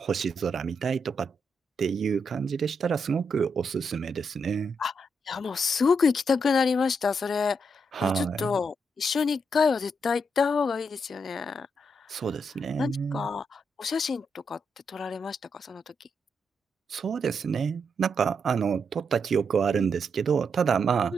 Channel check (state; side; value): normal; both; correlation 0.80